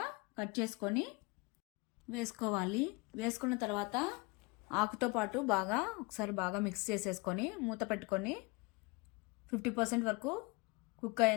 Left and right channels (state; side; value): quieter; right; 26.9 dB